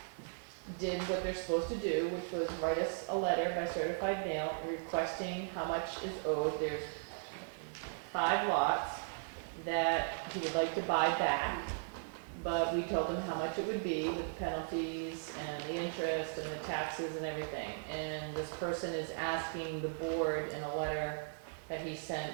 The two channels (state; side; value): silent; left; digital silence